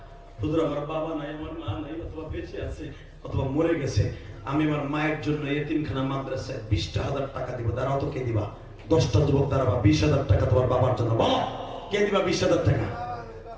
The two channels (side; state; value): both; identical; correlation 1.00